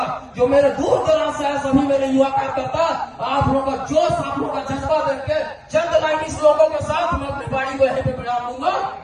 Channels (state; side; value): identical; both; correlation 1.00